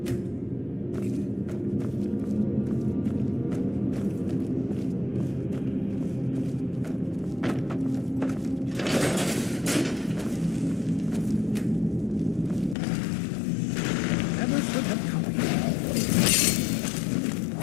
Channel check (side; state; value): right; drops out; at 12.8 s